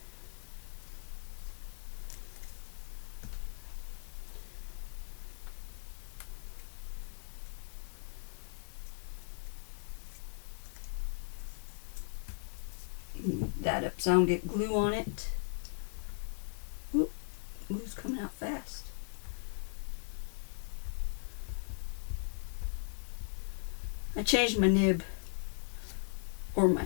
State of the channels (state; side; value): silent; right; digital silence